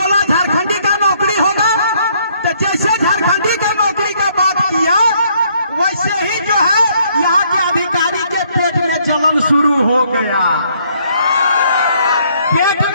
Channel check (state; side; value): inverted; both; correlation -0.67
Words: झारखंडी का नौकरी होगा, तो जैसे झारखंडी का नौकरी का बात किया, वैसे ही जो है यहाँ के अधिकारी के पेट में जलन शुरू हो गया। पेट